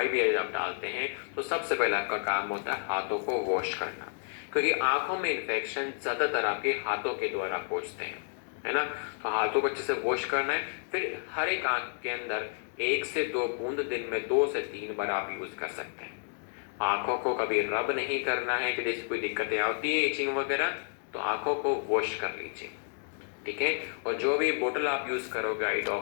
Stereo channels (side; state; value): right; silent; digital silence